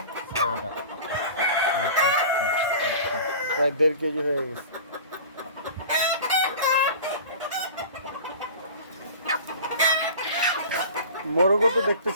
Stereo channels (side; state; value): both; inverted; correlation -0.38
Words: প্রায় 1.5 কেজি হয়ে গেছে। মোরগও তো দেখতে